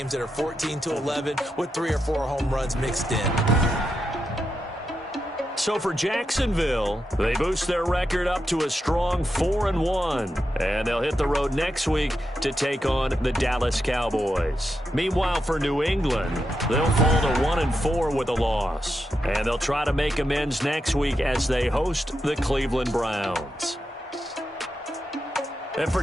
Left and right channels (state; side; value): normal; both; correlation 0.86